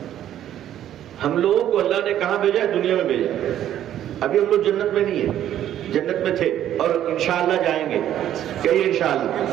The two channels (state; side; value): quieter; left; 11.4 dB